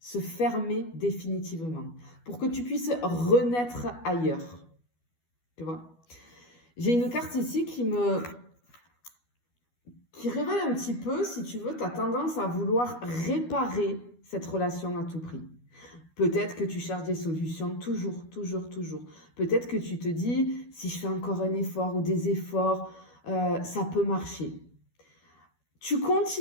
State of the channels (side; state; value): right; late; 12 ms